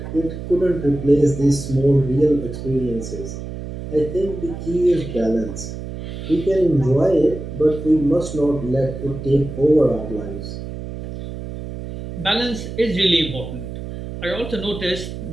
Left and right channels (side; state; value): right; noise; hum, 9 dB below the sound